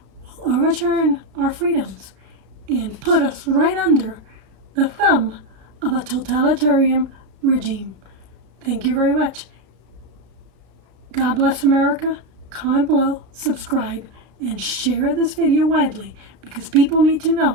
will overturn our freedoms and put us right under the thumb of a totalitarian regime. Thank you very much. God bless America. Comment below, subscribe, and share this video widely, because people need to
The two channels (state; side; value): late; left; 33 ms